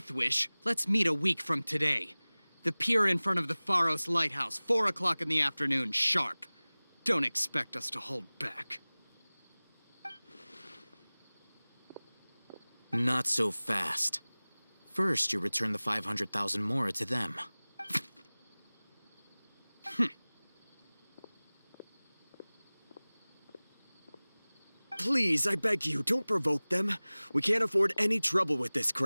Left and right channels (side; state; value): both; inverted; correlation -1.00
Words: wish, let's meet a week from today. The pier in front of the Pharos Lighthouse, 4 o'clock in the afternoon, sharp. Don't expect us to hold back. Not so fast. First, you return the 500,000 mora to them. Please, I beg you, don't provoke them. We can't afford any trouble with this